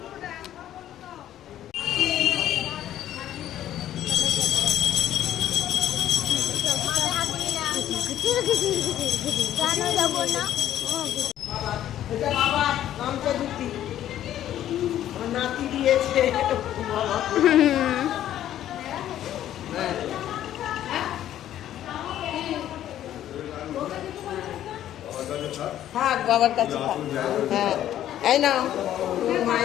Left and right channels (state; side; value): quieter; right; 11.9 dB